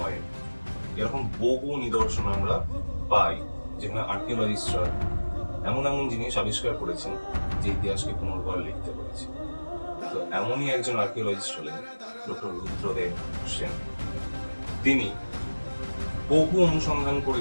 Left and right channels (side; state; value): both; inverted; correlation -1.00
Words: এরকম বহু নিদর্শন আমরা পাই যেখানে আর্কিওলজিস্টরা এমন এমন জিনিস আবিষ্কার করেছেন যে ইতিহাসকে পুনর্বার লিখতে পেরেছে। তো এমনই একজন আর্কিওলজিস্ট হলেন ডক্টর রুদ্রদেব সেন। তিনি বহু অনুসন্ধান